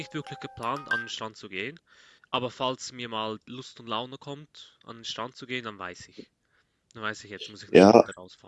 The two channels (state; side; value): identical; both; correlation 1.00